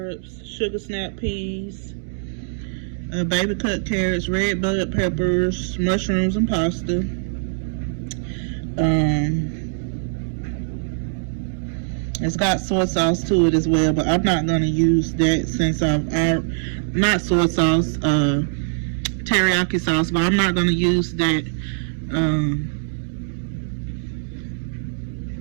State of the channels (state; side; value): silent; left; digital silence